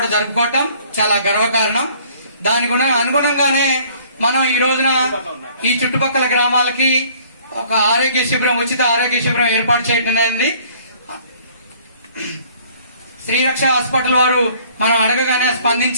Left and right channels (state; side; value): inverted; both; correlation -0.56